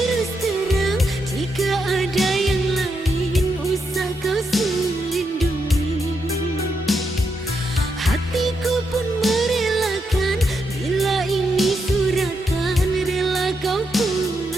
terang, jika ada yang lain usah kau selindungi. Hatiku pun merelakan, bila ini suratan rela kau pun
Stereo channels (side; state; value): both; normal; correlation 0.82